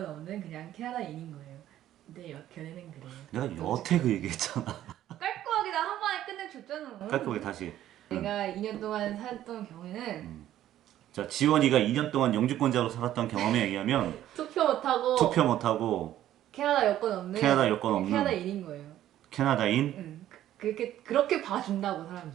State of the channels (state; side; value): quieter; left; 12.6 dB